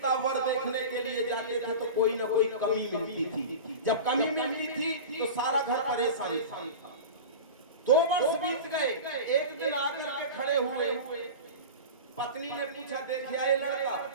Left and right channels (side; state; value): both; inverted; correlation -0.30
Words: वर देखने के लिए जाते थे तो कोई ना कोई कमी मिलती थी। जब कमी मिलती थी तो सारा घर परेशान था। 2 वर्ष बीत गए, एक दिन आकर के खड़े हुए, पत्नी ने पूछा देखिए ये लड़का,